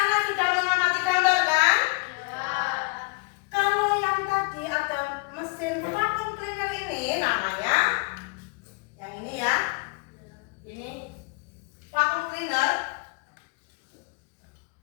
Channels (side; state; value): right; quieter; 31.0 dB